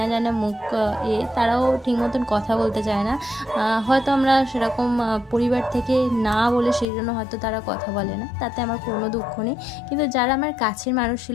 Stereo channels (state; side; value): drops out; right; at 6.9 s